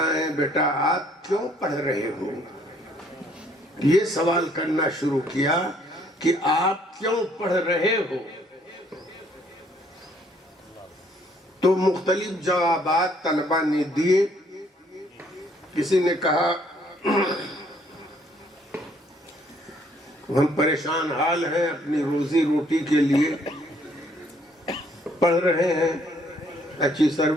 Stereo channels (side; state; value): both; normal; correlation 0.64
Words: ہیں بیٹا؟ آپ کیوں پڑھ رہے ہو؟ یہ سوال کرنا شروع کیا کہ آپ کیوں پڑھ رہے ہو؟ تو مختلف جوابات طلبہ نے دیے. کسی نے کہا ہم پریشان حال ہیں، اپنی روزی روٹی کے لیے پڑھ رہے ہیں، اچھی